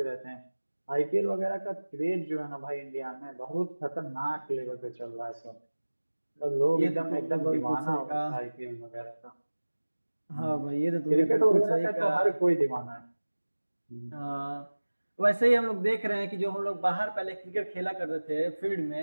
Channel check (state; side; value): inverted; both; correlation -1.00